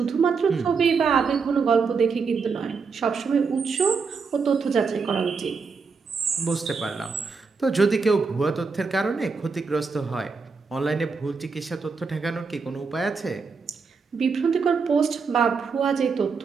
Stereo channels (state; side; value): quieter; left; 5.0 dB